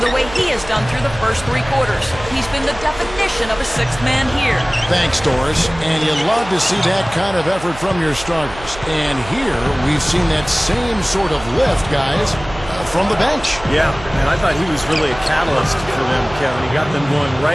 the way he has done through the first 3 quarters. He's been the definition of a 6th man here. Thanks, Doris. And you love to see that kind of effort from your starters. And here, we've seen that same sort of lift, guys, from the bench. Yeah, and I thought he was really a catalyst for them, Kevin. He got them going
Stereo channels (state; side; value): noise; right; hum, 15 dB below the sound